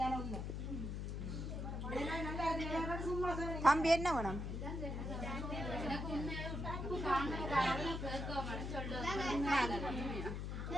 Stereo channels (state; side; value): noise; left; hum, 4 dB below the sound